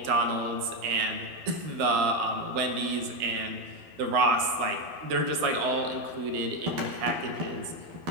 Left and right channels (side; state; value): left; late; 12 ms